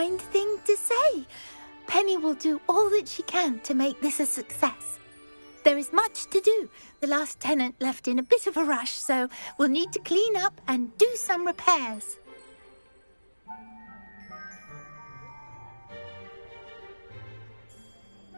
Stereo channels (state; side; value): inverted; both; correlation -1.00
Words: thing to say. Penny will do all that she can to make this a success. There is much to do. The last tenant left in a bit of a rush, so we'll need to clean up and do some repairs.